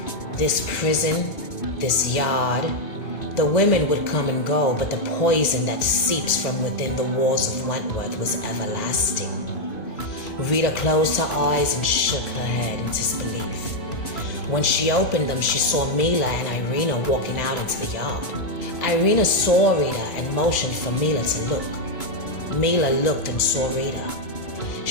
This prison, this yard. The women would come and go, but the poison that seeps from within the walls of Wentworth was everlasting. Rita closed her eyes and shook her head in disbelief. When she opened them, she saw Mila and Irina walking out into the yard. Irina saw Rita and motioned for Mila to look. Mila looked and saw Rita.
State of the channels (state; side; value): late; right; 2.0 ms